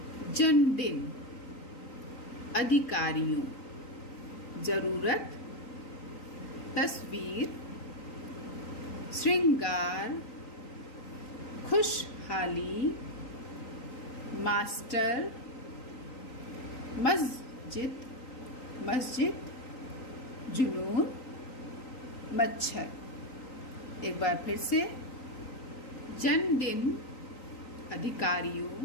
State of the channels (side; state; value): right; late; 3.9 ms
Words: जन्मदिन, अधिकारियों, जरूरत, तस्वीर, श्रृंगार, खुशहाली, मास्टर, मस्जिद, जुनून, मच्छर। एक बार फिर से, जन्मदिन,